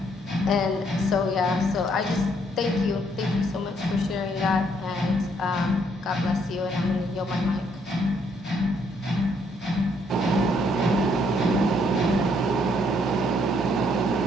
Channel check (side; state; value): both; normal; correlation 0.69